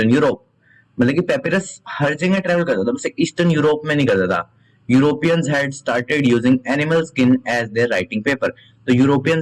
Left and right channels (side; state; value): both; identical; correlation 1.00